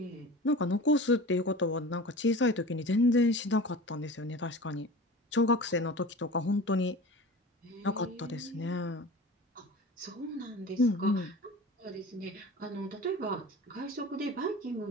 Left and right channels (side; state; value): both; normal; correlation 0.36